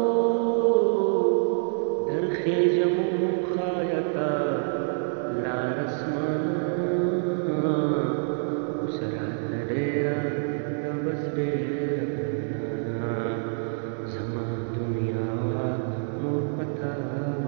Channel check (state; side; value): silent; left; 60 dB below the other